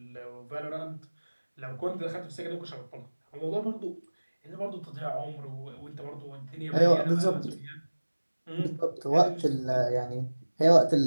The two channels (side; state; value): both; inverted; correlation -1.00